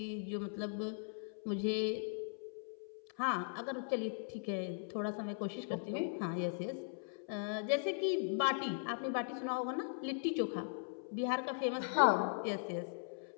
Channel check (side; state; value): right; silent; 52 dB below the other